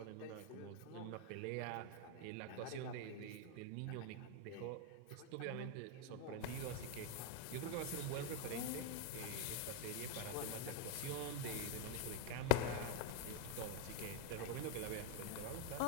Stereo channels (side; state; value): both; different; correlation 0.00